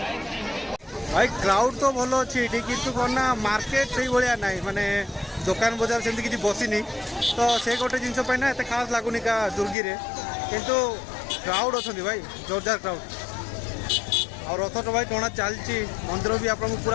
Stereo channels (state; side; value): drops out; right; at 9.8 s